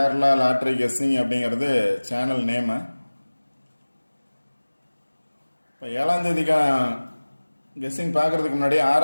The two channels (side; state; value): both; inverted; correlation -1.00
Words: லாட்ரி கெஸ்ஸிங் அப்படிங்கிறது சேனல் நேமு. இப்போ 7ஆம் தேதிக்கான கெஸ்ஸிங் பார்க்குறதுக்கு முன்னாடி